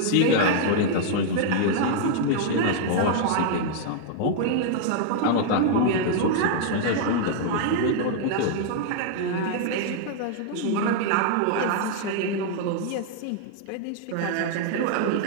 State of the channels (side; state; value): both; different; correlation 0.00